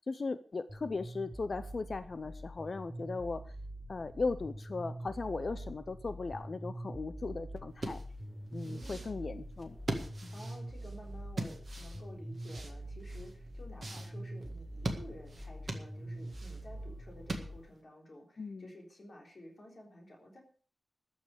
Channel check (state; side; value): normal; both; correlation 0.94